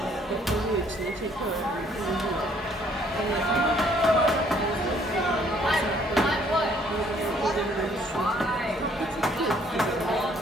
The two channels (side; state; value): both; normal; correlation 0.63